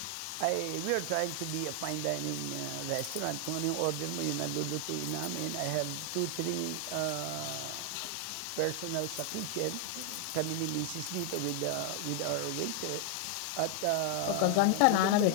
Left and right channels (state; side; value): different; both; correlation 0.00